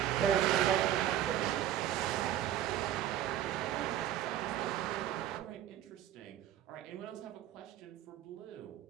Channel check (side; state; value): left; quieter; 11.7 dB